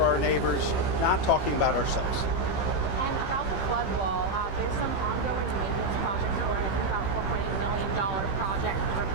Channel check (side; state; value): right; late; 15 ms